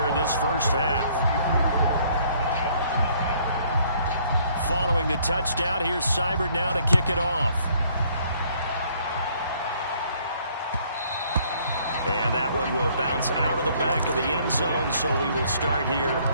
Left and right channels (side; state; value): both; inverted; correlation -0.62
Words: in this first half. Following the touchdown, here's Seibert now to kick it off. And that one will bounce out of the back of the end zone, so we will start here